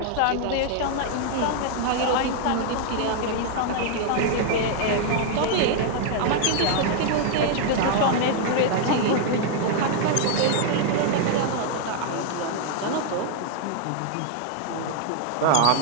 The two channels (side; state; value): both; different; correlation 0.00